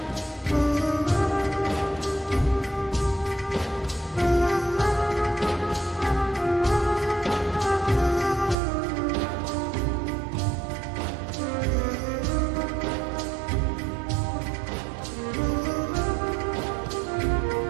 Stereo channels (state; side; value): drops out; left; at 8.6 s